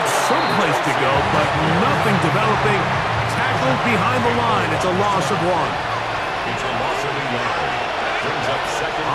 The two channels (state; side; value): identical; both; correlation 1.00